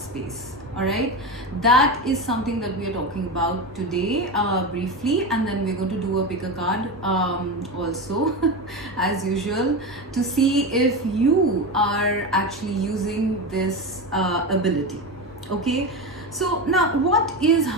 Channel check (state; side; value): normal; both; correlation 0.20